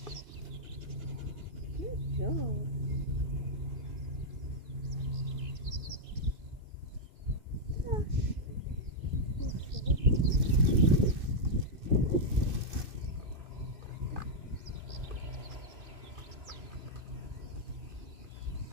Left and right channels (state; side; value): late; left; 2.5 ms